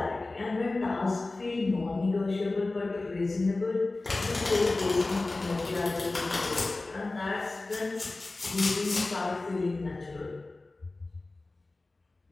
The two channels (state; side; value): quieter; right; 3.2 dB